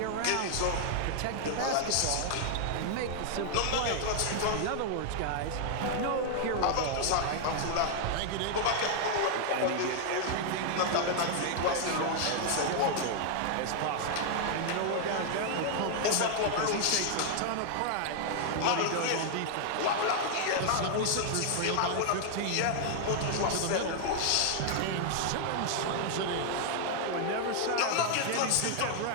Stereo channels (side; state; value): both; different; correlation 0.00